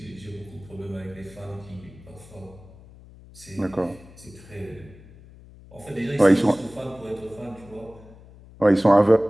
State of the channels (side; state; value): left; noise; hum, 21 dB below the sound